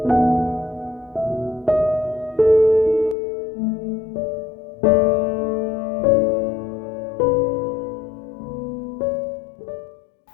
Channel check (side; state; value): right; drops out; at 3.2 s